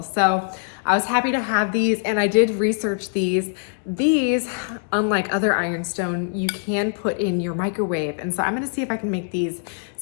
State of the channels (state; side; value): silent; right; digital silence